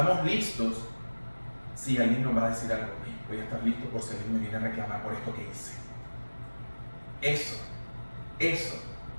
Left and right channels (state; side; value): inverted; both; correlation -1.00